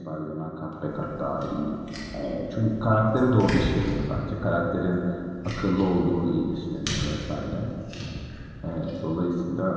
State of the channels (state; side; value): identical; both; correlation 1.00